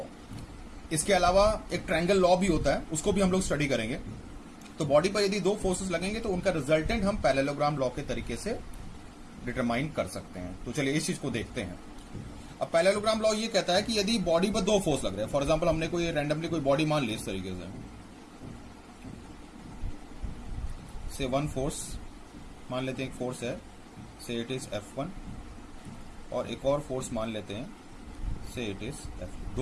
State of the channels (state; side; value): identical; both; correlation 1.00